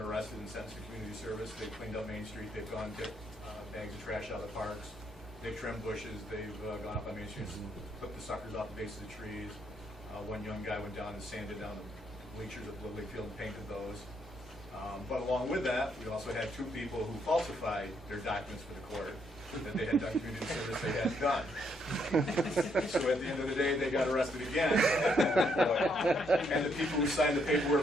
arrested and sentenced to community service. They've cleaned up Main Street, they've gone to bags of trash out of the parks, they've trimmed bushes, they've gone up on Main Street and clipped the suckers off the base of the trees. One young guy went down and sanded down the bleachers at Lily Field and painted those. But along with that, we also had 2 people who falsified their documents for the court that they had done community service they hadn't done. So at the end of the day, they got arrested again. And the people who signed the paperwork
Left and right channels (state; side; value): normal; both; correlation 0.73